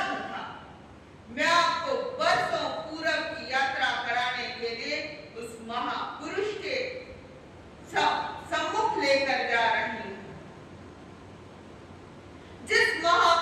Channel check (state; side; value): identical; both; correlation 1.00